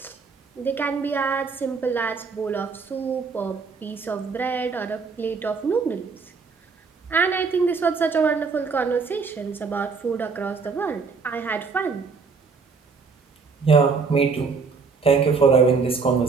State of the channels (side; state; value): left; quieter; 5.0 dB